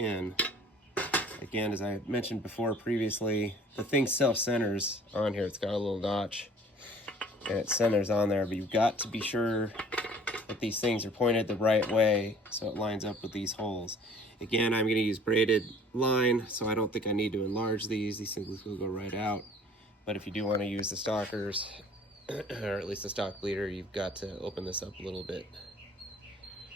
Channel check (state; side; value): normal; both; correlation 0.52